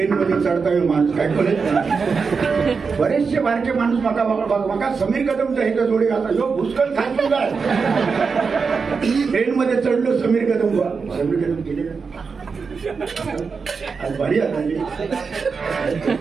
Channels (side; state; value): left; quieter; 5.2 dB